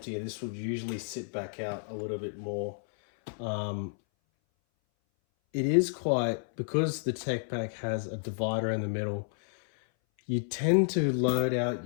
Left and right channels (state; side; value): silent; right; 57 dB below the other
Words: This would usually sit back out a little bit more. It is quite, because the Tech Pac has a divider in the middle, you tend to load out